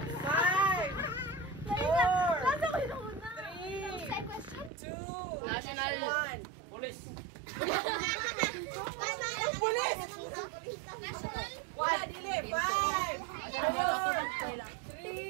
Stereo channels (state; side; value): drops out; left; at 4.7 s